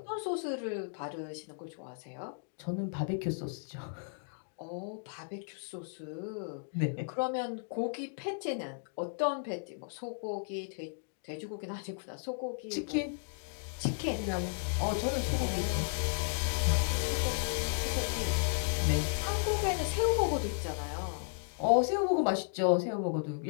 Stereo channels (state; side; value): silent; right; digital silence